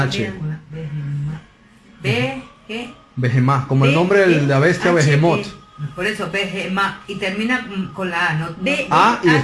Behemá. Beje... Behemá, como el nombre de la bestia H, Behemoth. Por eso, Behemá. Y termina con la A, ¿no? B- A y H.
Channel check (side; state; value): both; identical; correlation 1.00